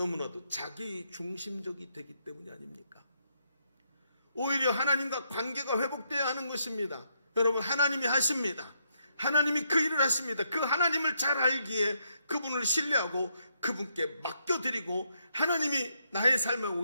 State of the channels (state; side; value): inverted; both; correlation -0.77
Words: 자기 중심적이 되기 때문이 아닙니까? 오히려 하나님과 관계가 회복되어야 하는 것입니다. 여러분, 하나님이 하십니다. 하나님이 그 일을 하십니다. 그 하나님을 잘 알기에 그분을 신뢰하고 그분께 맡겨드리고 하나님이 나의 삶에